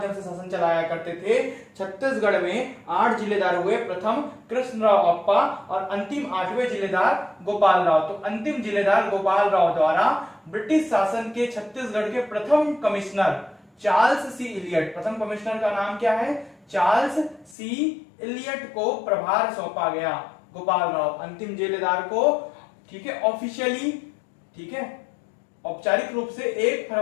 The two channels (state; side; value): drops out; right; at 17.6 s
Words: से शासन चलाया करते थे। छत्तीसगढ़ में 8 जिलेदार हुए, प्रथम कृष्णराव अप्पा और अंतिम 8वें जिलेदार गोपाल राव। तो अंतिम जिलेदार गोपाल राव द्वारा ब्रिटिश शासन के छत्तीसगढ़ के प्रथम कमिश्नर चार्ल्स सी इलियट, प्रथम कमिश्नर का नाम क्या है? चार्ल्स सी इलियट को प्रभार सौंपा गया। गोपाल राव अंतिम जिलेदार को ठीक है ऑफिशियली, ठीक है औपचारिक रूप से 1